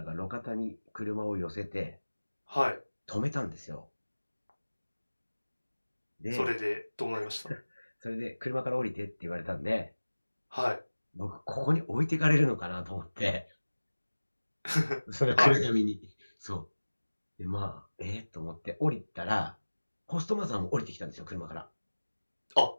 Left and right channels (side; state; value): both; inverted; correlation -1.00